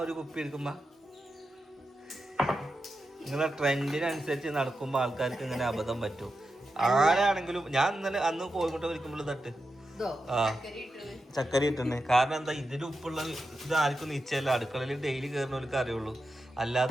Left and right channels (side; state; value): both; normal; correlation 0.89